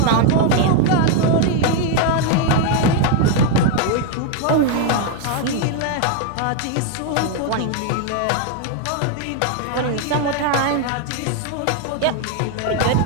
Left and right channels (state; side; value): different; both; correlation 0.01